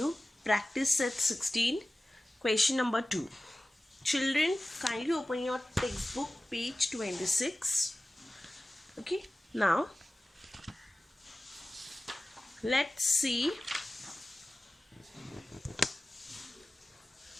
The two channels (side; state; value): both; normal; correlation 0.96